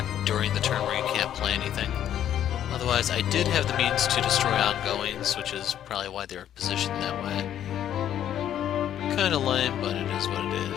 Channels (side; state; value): right; quieter; 10.6 dB